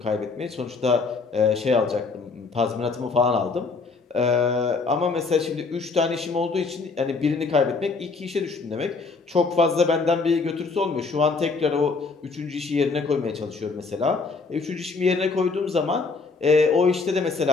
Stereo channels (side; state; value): right; quieter; 4.3 dB